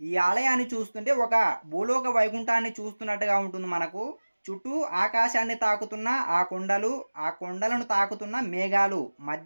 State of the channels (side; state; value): both; inverted; correlation -1.00